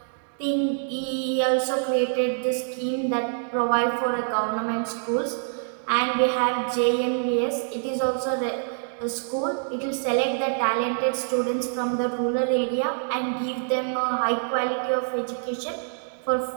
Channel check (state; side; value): silent; left; digital silence